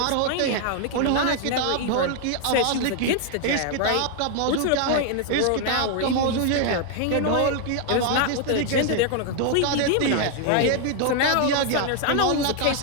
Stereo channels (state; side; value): different; both; correlation 0.00